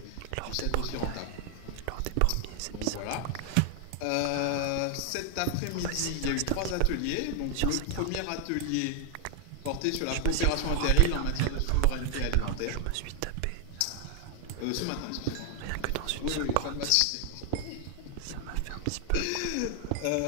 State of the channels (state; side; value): different; both; correlation 0.00